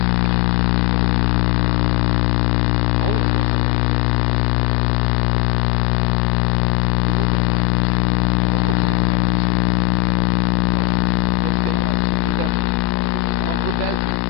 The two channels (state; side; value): quieter; right; 19.0 dB